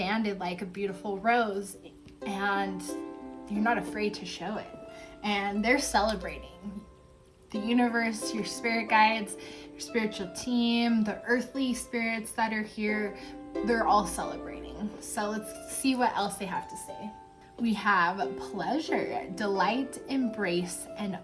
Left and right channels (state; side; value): identical; both; correlation 1.00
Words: like a beautiful rose and you're not afraid to show it. And they're celebrating. The universe, your spirit guides, your spiritual team, the earthly spirits that are here, they're all celebrating. So let's see what else they have to say. We have pleasure, delight, embrace, and